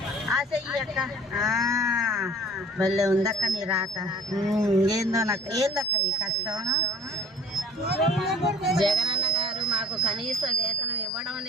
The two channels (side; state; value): both; normal; correlation 0.46